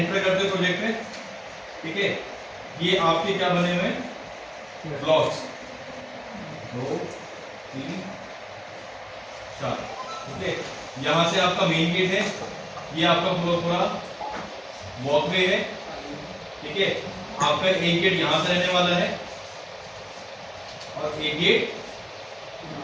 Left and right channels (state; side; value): identical; both; correlation 1.00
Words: करते हो प्रोजेक्ट में, ठीक है। ये आपके क्या बने हुए हैं? ब्लॉक्स 2 3 4, ठीक है। यहां से आपका मेन गेट है, ये आपका पूरा वॉकवे है, ठीक है। आपका एक गेट यहां से रहने वाला है और एक गेट